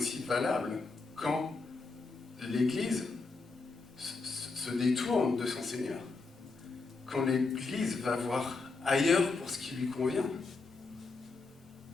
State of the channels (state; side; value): quieter; right; 3.9 dB